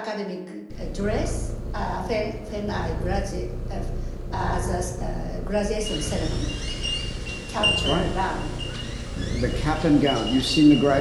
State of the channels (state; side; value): identical; both; correlation 1.00